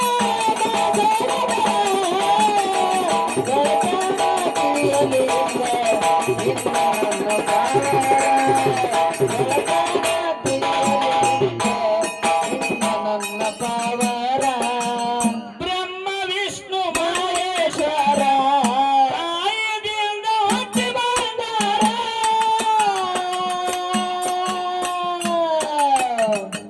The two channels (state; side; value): identical; both; correlation 1.00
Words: ನನ್ನ ಪಾವರ ಬ್ರಹ್ಮ ವಿಷ್ಣು ಮಹೇಶ್ವರ ತಾಯಿಯಿಂದ ಹುಟ್ಟಿ ಬಂದಾರ